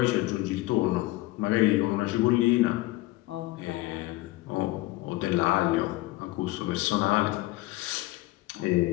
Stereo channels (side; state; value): right; quieter; 19.1 dB